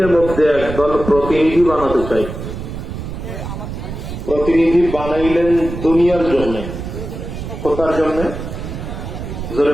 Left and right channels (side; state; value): right; noise; rumble, 8 dB below the sound